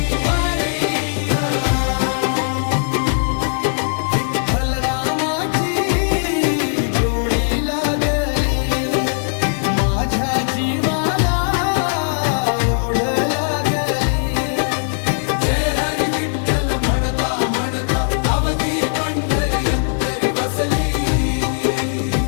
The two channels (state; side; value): silent; right; 67 dB below the other